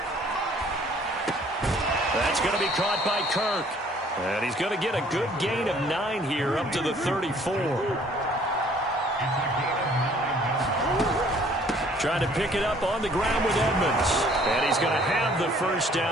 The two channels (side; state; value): both; normal; correlation 0.58